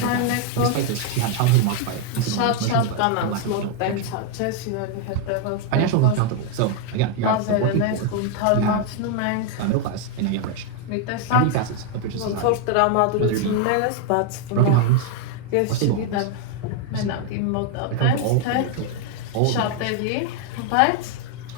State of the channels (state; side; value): different; both; correlation 0.01